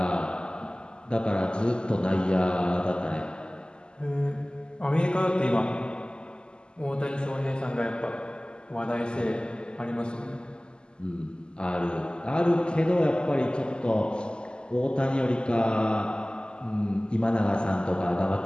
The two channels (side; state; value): right; late; 0.048 ms